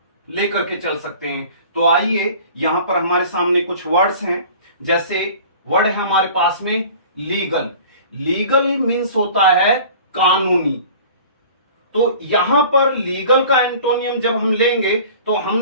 लेकर के चल सकते हैं। तो आइए यहां पर हमारे सामने कुछ वर्ड्स हैं। जैसे वर्ड है हमारे पास में लीगल। लीगल मीन्स होता है कानूनी। तो यहां पर लीगल का एंटोनियम जब हम लेंगे तो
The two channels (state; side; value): inverted; both; correlation -0.44